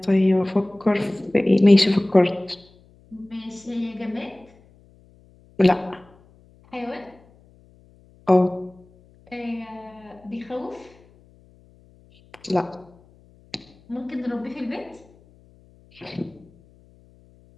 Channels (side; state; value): left; noise; hum, 29 dB below the sound